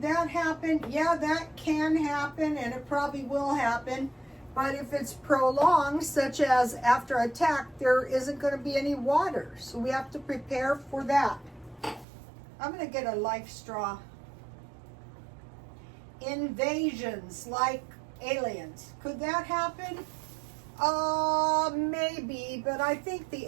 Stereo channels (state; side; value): drops out; left; at 12.1 s